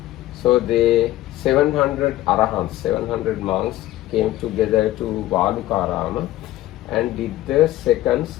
So the 700 Arahants, 700 monks came together to Valukarama and did the second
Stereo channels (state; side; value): quieter; right; 15.3 dB